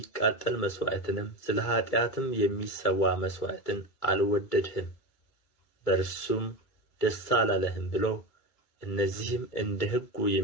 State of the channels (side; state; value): right; late; 2.3 ms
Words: መሥዋዕትንም ስለ ኃጢአትም የሚሰዋ መሥዋዕትን አልወደድህም፣ በእርሱም ደስ አላለህም ብሎ እነዚህም እንደ ሕጉ